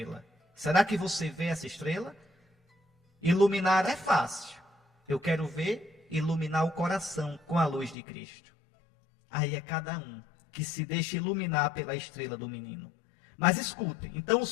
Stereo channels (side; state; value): right; drops out; at 8.0 s